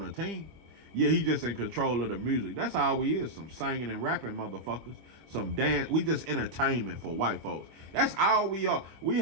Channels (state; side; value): late; left; 25 ms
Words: a team. Yeah, he just in control of the music. That's all we is. Some singing and rapping motherfuckers. Some dance. We just entertainment for white folks. That's all we are. We